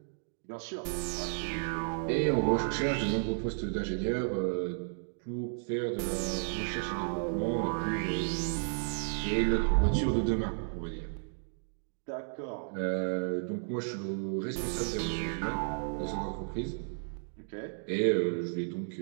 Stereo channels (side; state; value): left; silent; digital silence